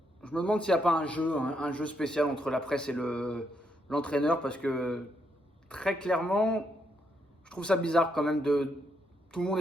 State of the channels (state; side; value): normal; both; correlation 0.77